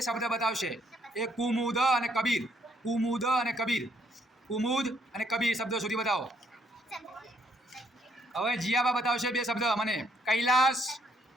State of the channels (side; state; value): both; normal; correlation 0.70